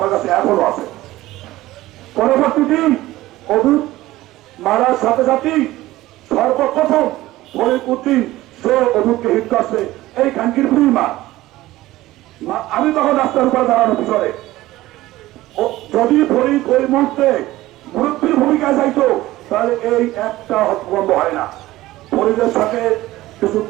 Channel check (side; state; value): left; quieter; 16.9 dB